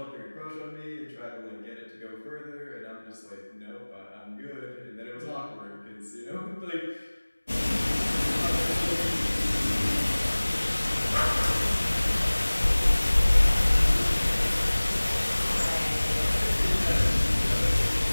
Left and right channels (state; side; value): inverted; both; correlation -1.00